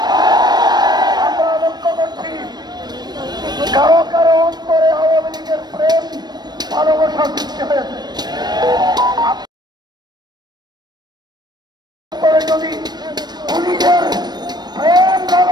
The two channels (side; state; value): left; late; 0.20 ms